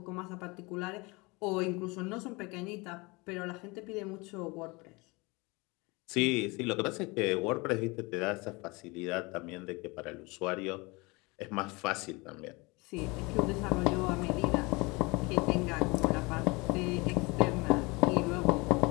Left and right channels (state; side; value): quieter; right; 25.9 dB